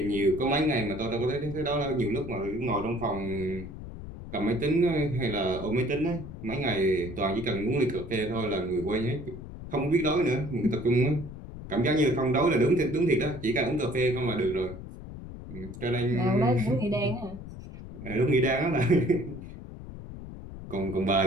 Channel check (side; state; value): left; noise; rumble, 12 dB below the sound